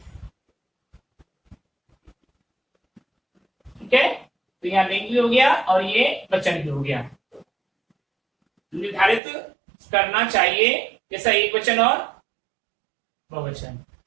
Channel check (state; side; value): drops out; left; at 9.2 s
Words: ठीक है, तो यहाँ लिंग भी हो गया और ये वचन भी हो गया। निर्धारित करना चाहिए जैसा एक वचन और बहुवचन।